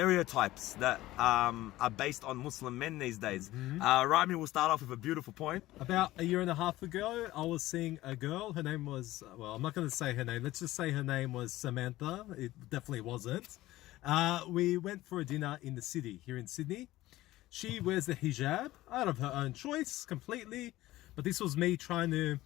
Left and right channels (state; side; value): quieter; right; 16.7 dB